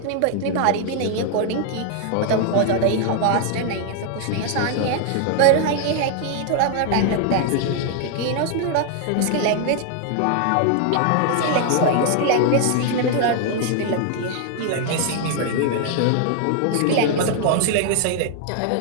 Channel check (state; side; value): different; both; correlation 0.00